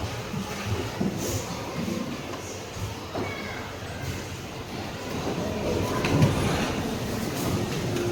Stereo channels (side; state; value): both; identical; correlation 1.00